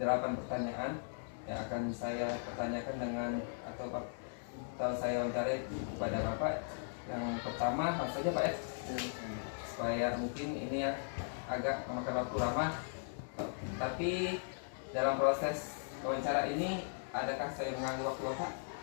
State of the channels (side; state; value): right; silent; digital silence